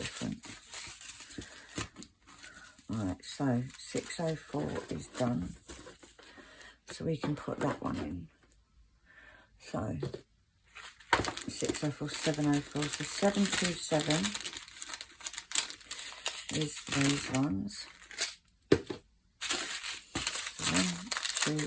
Right, so 604 is done. So we can put that one in. So 604, 704. So 727 is these ones. 1, 2,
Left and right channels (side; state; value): both; identical; correlation 1.00